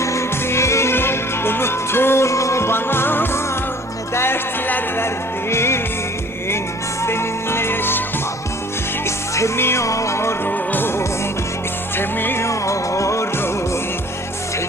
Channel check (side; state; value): both; normal; correlation 0.51